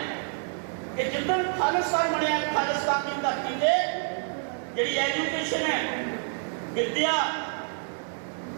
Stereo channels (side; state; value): left; silent; 59 dB below the other